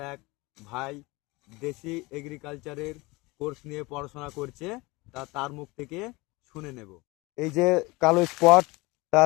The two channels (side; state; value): right; quieter; 23.4 dB